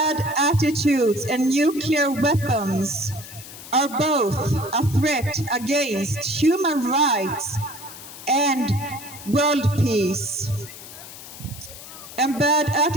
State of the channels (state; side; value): noise; left; hiss, 15 dB below the sound